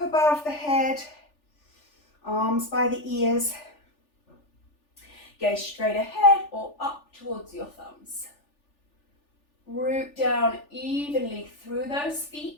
above the head. Arms by the ears. Gaze straight ahead or up towards your thumbs. Root down evenly through those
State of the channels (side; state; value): right; late; 3.4 ms